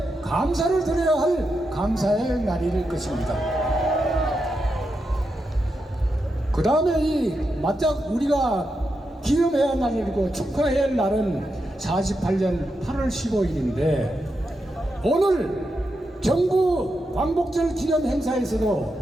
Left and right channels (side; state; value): both; normal; correlation 0.86